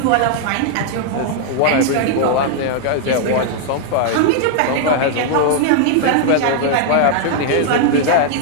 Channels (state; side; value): different; both; correlation -0.01